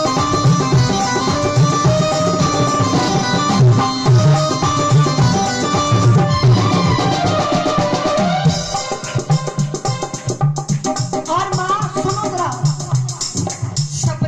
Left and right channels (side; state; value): both; identical; correlation 1.00